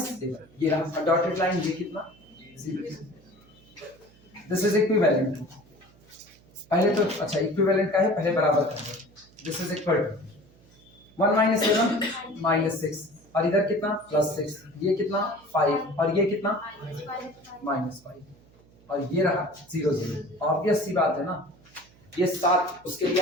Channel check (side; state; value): right; noise; hum, 27 dB below the sound